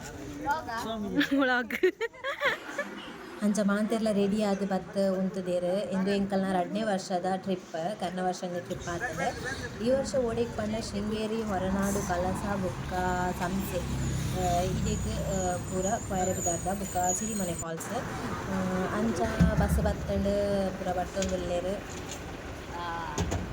ವ್ಲಾಗ್ ಅಂಚ ಮಾಂತೆರ್ಲ ರೆಡಿ ಆದ್ ಬತ್ ಉಂತುದೆರ್ ಇಂದು ಎಂಕಲ್ನ 2ನೇ ವರ್ಷದ ಟ್ರಿಪ್ ಕರ್ನ ವರ್ಷದ ಟ್ರಿಪ್ ಆಗ್ತದೆ. ಈ ವರ್ಷ ಓಡೆಗ್ ಪಂಡ ಶೃಂಗೇರಿ ಹೊರನಾಡು ಕಲಸ ಬುಕ್ಕ ಸಂಸೆ ಇದೆಗ್ ಪೂರ ಕೊಯರೆ ಬಿದ್ದಾರ್ದ ಬುಕ್ಕ ಸಿರಿಮನೆ ಫಾಲ್ಸ್ ಅಂಚ ಬಸ್ ಬತ್ತಂಡ್ ಪೂರ ಬರ್ತೊಂದುಲ್ಲೆರ್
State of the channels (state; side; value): identical; both; correlation 1.00